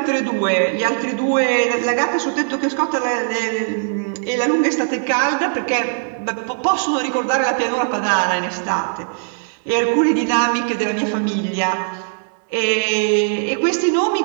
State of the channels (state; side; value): silent; left; 66 dB below the other